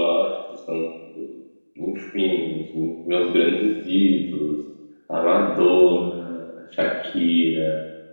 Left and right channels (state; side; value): inverted; both; correlation -1.00